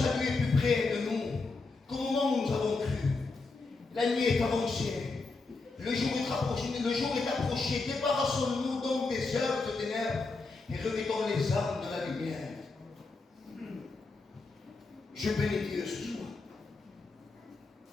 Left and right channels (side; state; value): right; quieter; 3.8 dB